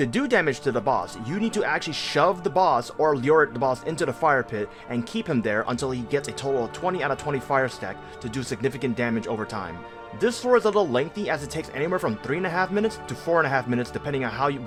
do damage to the boss, you need to actually shove the boss or lure the boss into the fire pit and keep him there until he gets a total of 20 out of 20 fire stack to do significant damage over time. This floor is a little lengthy as it takes anywhere from 3.5 minutes to 4.5 minutes depending on how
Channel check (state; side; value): identical; both; correlation 1.00